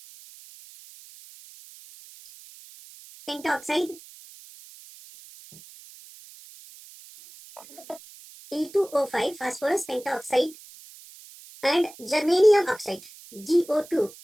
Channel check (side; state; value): right; noise; hiss, 20 dB below the sound